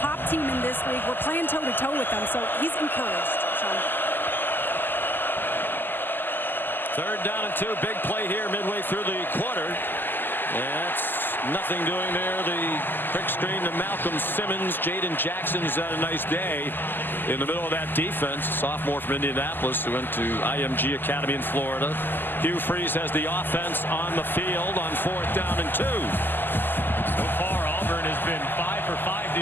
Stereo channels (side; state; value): right; late; 0.092 ms